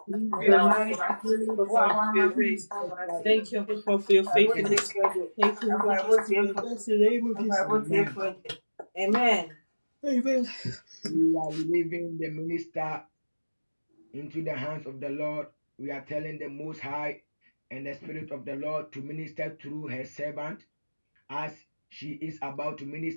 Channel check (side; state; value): both; inverted; correlation -1.00